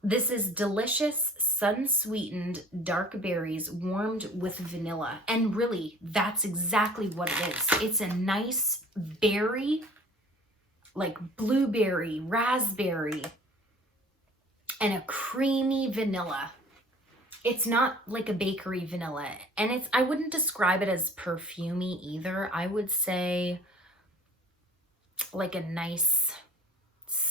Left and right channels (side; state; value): both; normal; correlation 0.49